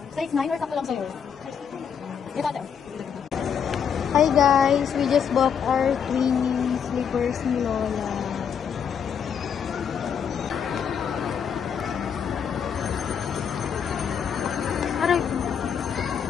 Size 9 or sakto lang sa'yo? Ito, ate. Hi guys, we just bought our twin slippers ni Lola. Aray.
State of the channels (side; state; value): right; quieter; 7.5 dB